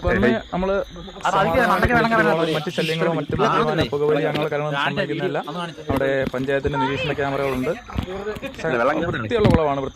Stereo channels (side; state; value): both; identical; correlation 1.00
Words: പുറമെ നമ്മള് മറ്റു ശല്യങ്ങളോ മറ്റു പുകവലി അങ്ങനെ കാര്യങ്ങളൊന്നും സംഭവിക്കുന്നില്ല. അവിടെ പഞ്ചായത്തിന്റെ നിരീക്ഷണ ക്യാമറകളുണ്ട്. വൃത്തിയുള്ള കുളമാണ്.